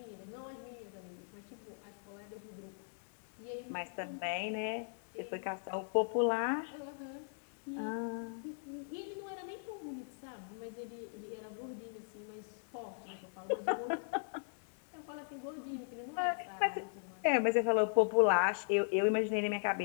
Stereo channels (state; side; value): silent; right; digital silence